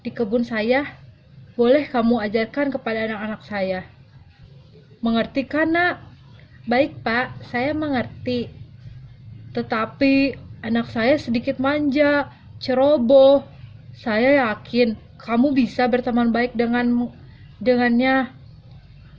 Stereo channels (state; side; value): identical; both; correlation 1.00